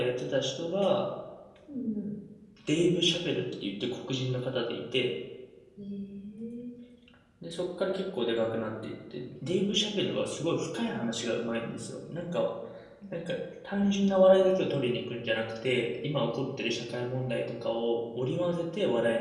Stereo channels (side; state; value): both; identical; correlation 1.00